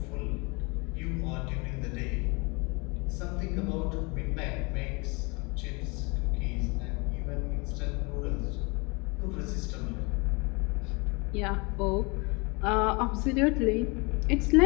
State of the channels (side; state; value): right; quieter; 29.0 dB